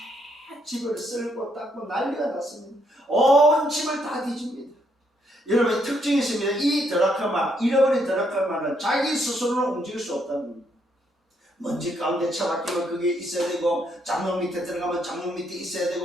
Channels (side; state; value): both; normal; correlation 0.73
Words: 집을 쓸고 닦고 난리가 났습니다. 온 집을 다 뒤집니다. 여러분, 특징이 있습니다. 이 드라크마, 잃어버린 드라크마는 자기 스스로는 움직일 수 없다는 겁니다. 먼지 가운데 처박히면 그게 있어야 되고, 장롱 밑에 들어가면 장롱 밑에 있어야